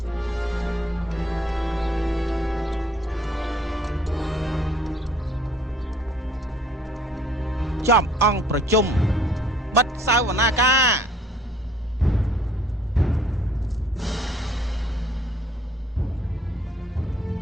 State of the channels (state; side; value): normal; both; correlation 0.59